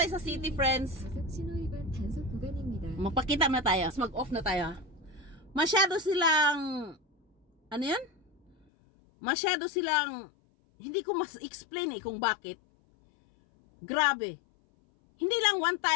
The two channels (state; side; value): drops out; right; at 8.6 s